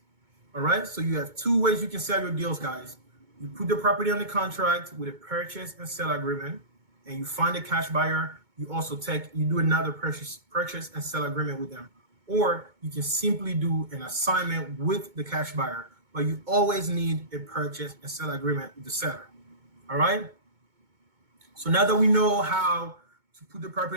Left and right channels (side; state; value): left; late; 2.2 ms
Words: all right? So you have two ways you can sell your deals, guys. You put the property on the contract with a purchase and sale agreement, and you find a cash buyer. You also do another purchase and sale agreement with them, or you can simply do an assignment with the cash buyer. But you always need a purchase and sale agreement with the seller. All right? So now that we know how to put the